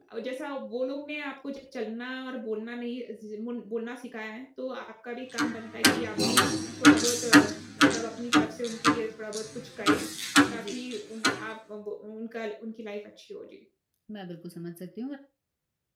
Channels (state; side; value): identical; both; correlation 1.00